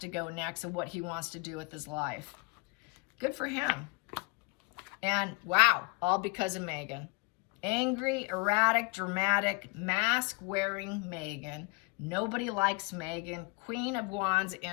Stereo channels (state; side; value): quieter; right; 28.4 dB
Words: go next and what he wants to do with his life. Good for him. And wow, all because of Megan. Angry, erratic, dramatic, mask-wearing Megan. Nobody likes Megan. Queen of Wands